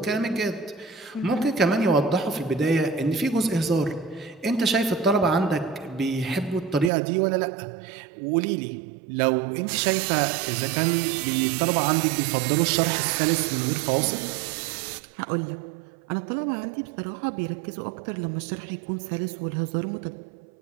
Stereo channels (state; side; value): drops out; left; at 6.9 s